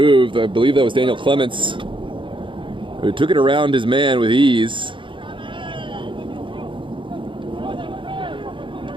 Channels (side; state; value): left; late; 0.24 ms